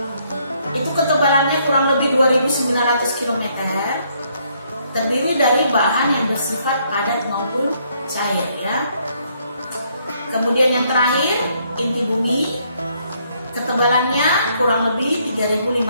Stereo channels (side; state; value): both; inverted; correlation -0.70